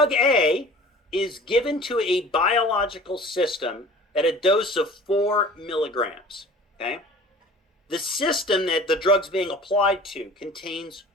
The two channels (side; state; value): both; normal; correlation 0.44